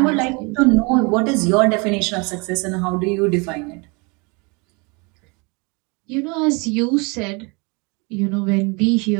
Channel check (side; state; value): left; quieter; 29.9 dB